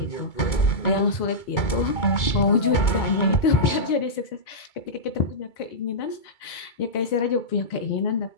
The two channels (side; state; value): right; late; 2.2 ms